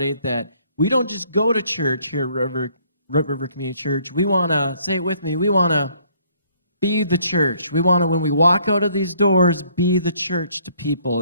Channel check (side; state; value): both; inverted; correlation -0.64